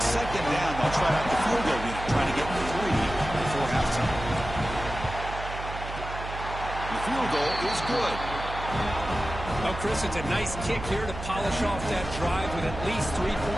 second down, they'll try out the field goal unit, trying to get 3 before halftime. The field goal is good. Well, Chris, it's a nice kick here to polish off that drive with at least 3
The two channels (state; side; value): noise; right; hum, 9 dB below the sound